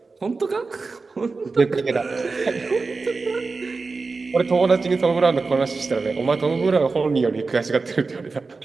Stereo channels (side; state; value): left; quieter; 4.1 dB